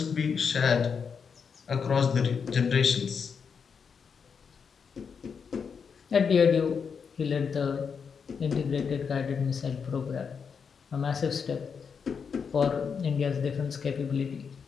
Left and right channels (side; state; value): right; quieter; 6.2 dB